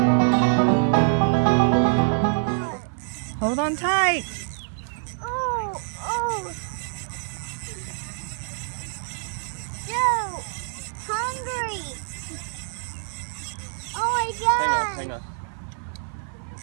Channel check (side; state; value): left; silent; 62 dB below the other